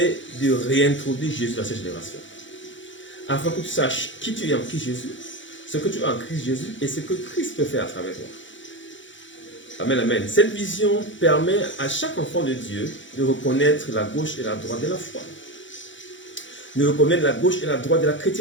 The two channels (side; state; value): right; late; 0.55 ms